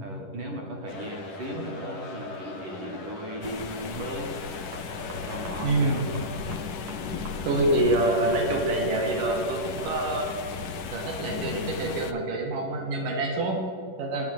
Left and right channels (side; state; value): left; late; 11 ms